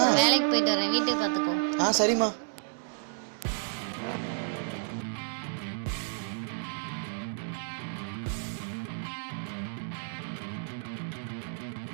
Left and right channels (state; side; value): silent; left; digital silence